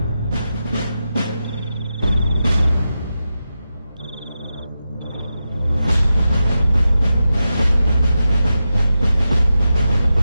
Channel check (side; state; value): both; inverted; correlation -0.90